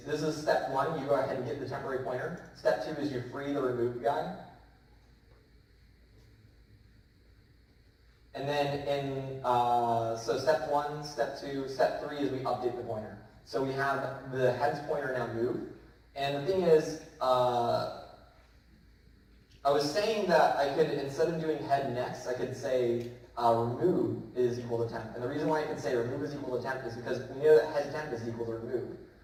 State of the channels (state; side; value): identical; both; correlation 1.00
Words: this is step one, you go ahead and get the temporary pointer. Step two is you free the remove guy. And then so step one, step two, step three is we update the pointer. So we have the head's pointer now moved. And the thing is, I was saying that I could, instead of doing head next, I could say remove is equal to temp. And the reason why I can say remove is equal to temp is because we know that head temp is equal to remove.